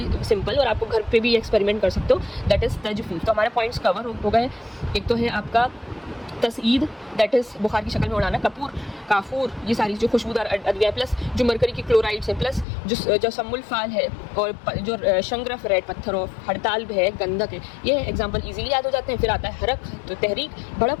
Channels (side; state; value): right; drops out; at 12.7 s